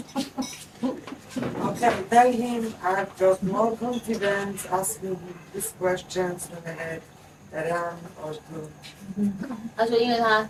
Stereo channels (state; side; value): identical; both; correlation 1.00